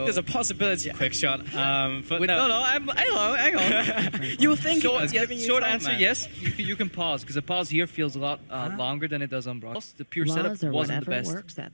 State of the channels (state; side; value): inverted; both; correlation -1.00